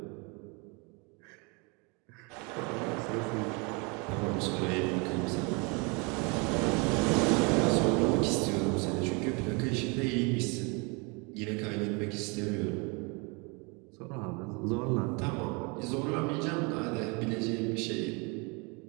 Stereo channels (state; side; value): quieter; left; 30.7 dB